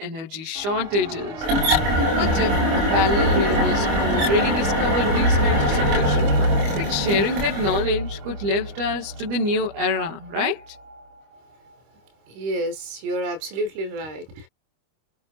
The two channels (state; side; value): late; left; 25 ms